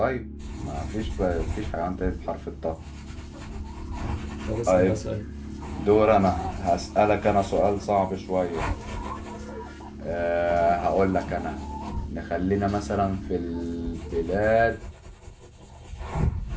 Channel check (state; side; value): identical; both; correlation 1.00